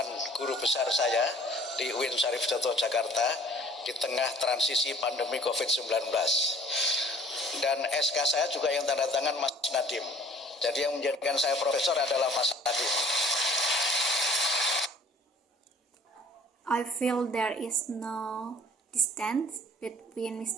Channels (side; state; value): both; normal; correlation 0.52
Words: guru besar saya di UIN Syarif Hidayatullah Jakarta di tengah transisi pandemi COVID-19. Dan SK saya juga yang tanda tangan Mas Nadiem. Jadi yang menjadikan saya profesor adalah Mas Nadiem. I feel there is no distance between